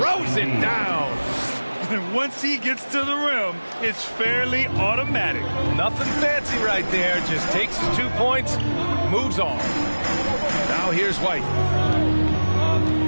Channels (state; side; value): inverted; both; correlation -1.00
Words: it down. And once he gets to the rim, it's fairly automatic. Nothing fancy right there. Just takes his 2 points, moves on. Now here's White.